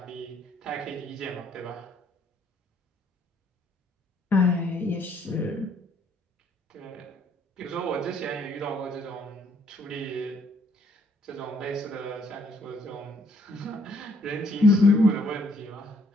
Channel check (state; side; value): normal; both; correlation 0.66